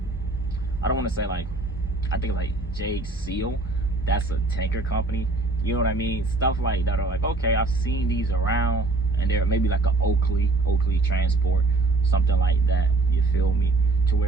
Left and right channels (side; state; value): left; quieter; 3.2 dB